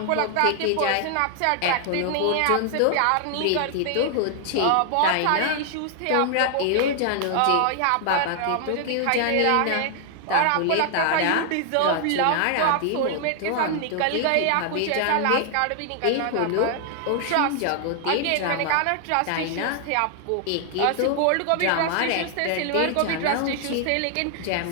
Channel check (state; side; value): different; both; correlation 0.00